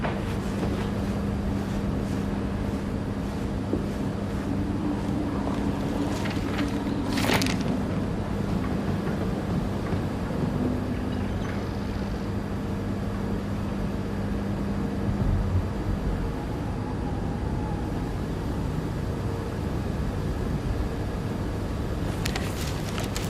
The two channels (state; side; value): identical; both; correlation 1.00